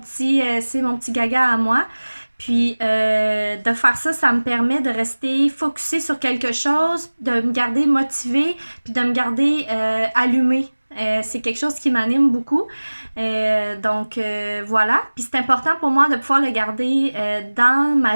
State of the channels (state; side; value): inverted; both; correlation -1.00